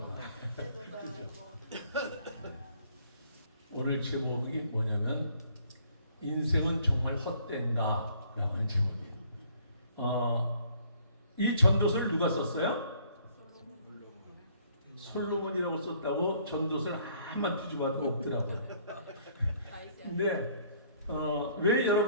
오늘 제목이 뭐냐면 인생은 정말 헛된가 라고 하는 제목이에요. 이 전도서를 누가 썼어요? 솔로몬이라고 썼다고 전도서를 한만 뒤집어도 없더라고요. 근데 왜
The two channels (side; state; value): both; inverted; correlation -0.62